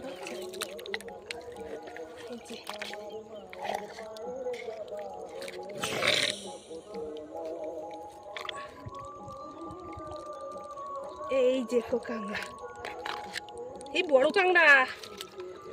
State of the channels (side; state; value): both; identical; correlation 1.00